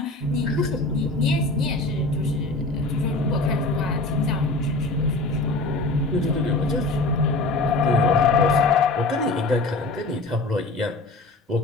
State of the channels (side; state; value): right; quieter; 3.1 dB